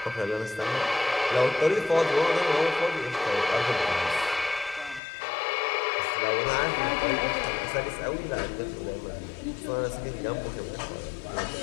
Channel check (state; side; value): drops out; right; at 5.0 s